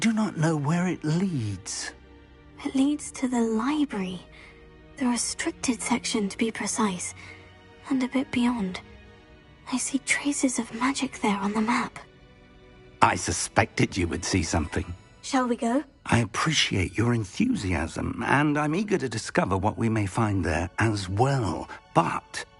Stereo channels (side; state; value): both; identical; correlation 1.00